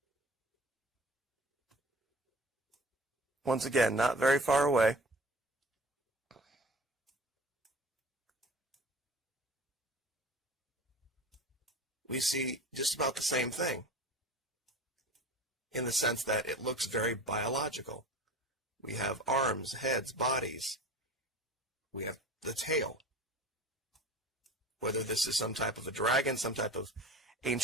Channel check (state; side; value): normal; both; correlation 0.38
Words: Once again, not very far away. We see just about the same thing in the sense that it looks very biological. We have arms, heads, bodies. We have the tail. Whether this is some type of a dragon, some type of